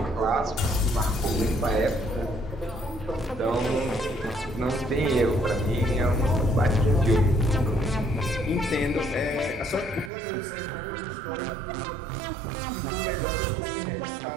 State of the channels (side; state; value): left; drops out; at 10.1 s